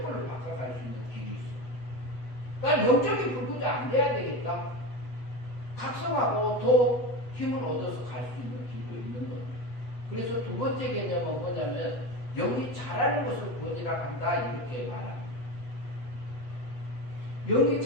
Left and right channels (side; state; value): right; late; 8.0 ms